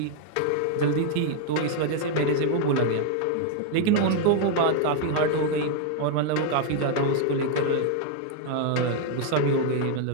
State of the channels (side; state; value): both; different; correlation 0.00